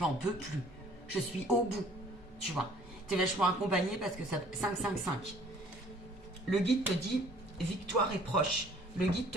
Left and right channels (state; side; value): normal; both; correlation 0.56